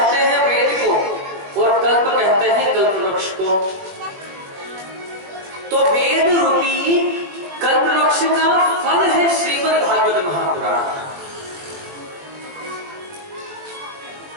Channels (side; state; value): left; late; 21 ms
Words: हैं वेद को और कल्प कहते हैं कल्प वृक्ष को। तो वेद रूपी कल्प वृक्ष का फल है श्रीमद् भागवत महापुराण।